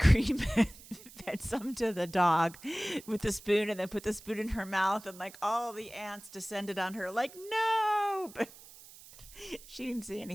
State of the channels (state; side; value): noise; right; hiss, 19 dB below the sound